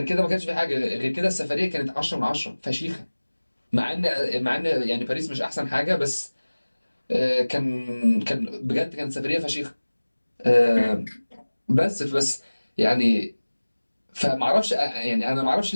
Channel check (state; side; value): inverted; both; correlation -1.00